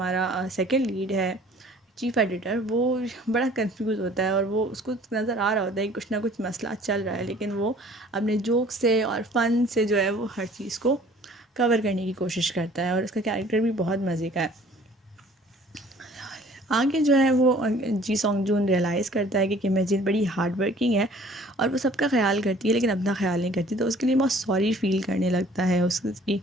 सेकंड लीड है चीफ़ एडिटर, वो बड़ा कंफ्यूज होता है और वो उसको नज़र आ रहा होता है कि कुछ ना कुछ मसला चल रहा है, लेकिन वो अपने जोक से और फ़न से जो है वो हर चीज़ को कवर करने की कोशिश करता है। और उसका कैरेक्टर भी बहुत मज़े का है। आगे जो है वो जी सॉन्गजून रियलाइज़ करता है कि किम हेजिन बड़ी हार्ड वर्किंग है और वो सबका ख्याल करती है लेकिन अपना ख्याल नहीं करती, तो उसके लिए बहुत सॉरी फील करने लगता है उसकी।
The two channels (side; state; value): both; normal; correlation 0.53